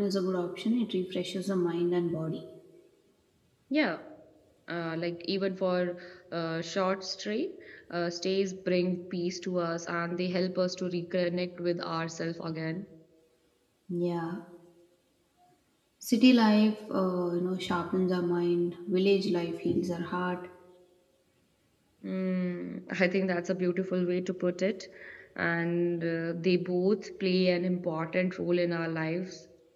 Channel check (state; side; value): identical; both; correlation 1.00